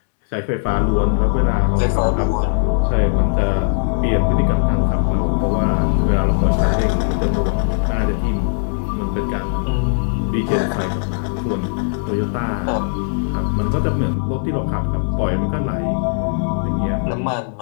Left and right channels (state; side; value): silent; right; digital silence